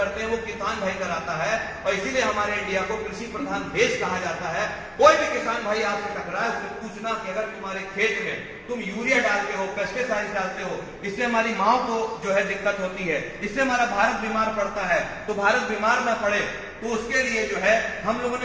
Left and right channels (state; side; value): identical; both; correlation 1.00